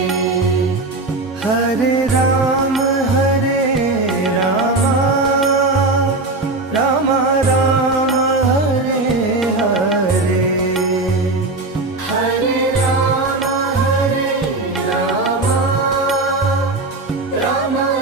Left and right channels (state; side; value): quieter; left; 3.2 dB